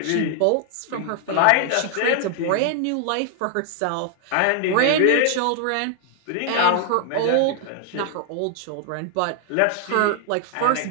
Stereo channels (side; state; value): both; different; correlation 0.00